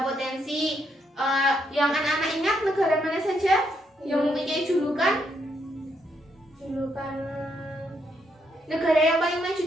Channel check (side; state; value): both; normal; correlation 0.76